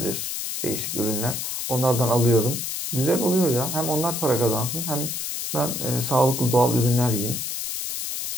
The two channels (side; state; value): left; noise; hiss, 4 dB below the sound